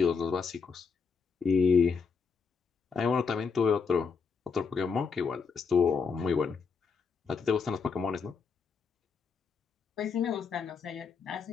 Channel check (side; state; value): right; quieter; 5.4 dB